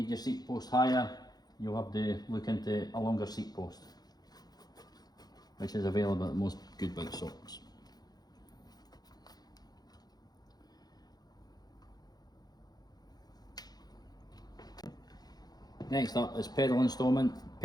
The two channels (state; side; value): late; right; 0.19 ms